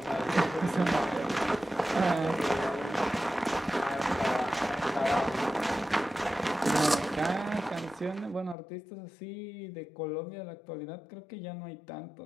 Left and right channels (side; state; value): right; drops out; at 8.6 s